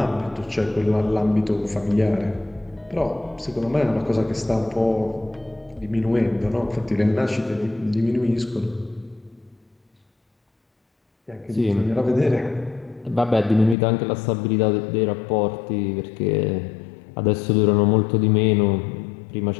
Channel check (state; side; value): drops out; right; at 13.8 s